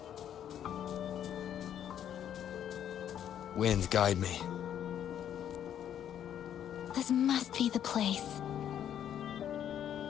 Wind, guide me. This must be the place.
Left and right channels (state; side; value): quieter; right; 10.0 dB